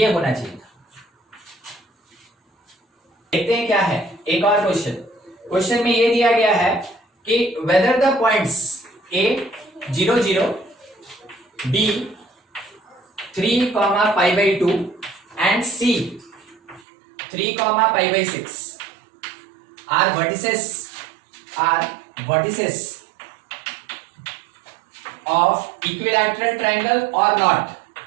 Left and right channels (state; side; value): drops out; left; at 16.9 s